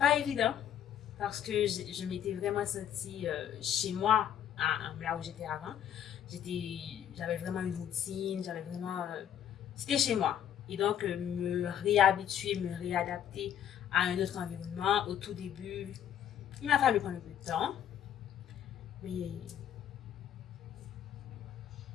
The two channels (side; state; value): right; quieter; 9.8 dB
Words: évident parce que je m'étais vraiment sentie chez moi, là où j'étais avant. J'avais vraiment une routine, j'avais vraiment. C'était chez moi. Et donc, me réhabituer, me réadapter à un autre environnement, au tout début, il m'a fallu prendre un peu de temps. Mais